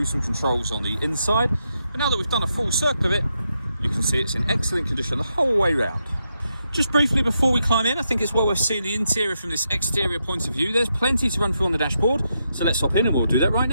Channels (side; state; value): both; inverted; correlation -0.83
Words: some controls on the inside. But now that we've done a full circle of it, you can see it's in excellent condition the whole way round. Just briefly before we climb in, I think it's well worth seeing the interior from this exterior point of view. There's plenty to run through on the dashboard, so let's hop in and we'll do that right